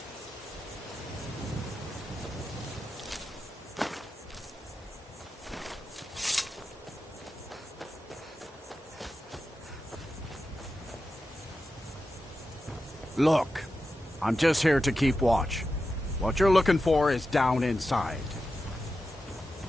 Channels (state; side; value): normal; both; correlation 0.91